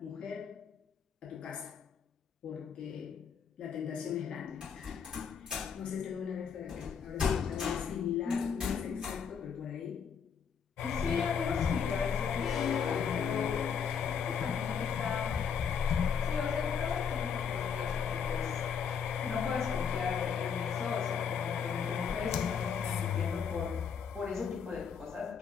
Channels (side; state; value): right; quieter; 6.9 dB